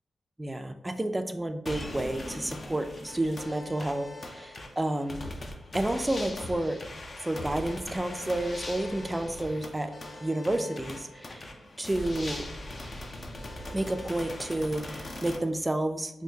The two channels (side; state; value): both; normal; correlation 0.96